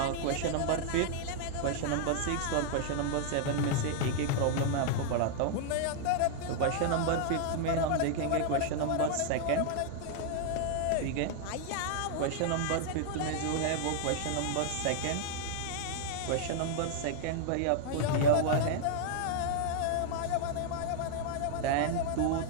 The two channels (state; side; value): different; both; correlation -0.01